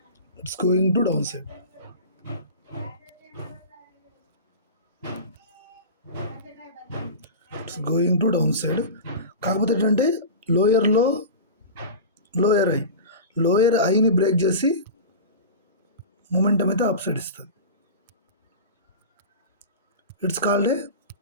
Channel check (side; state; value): both; inverted; correlation -0.30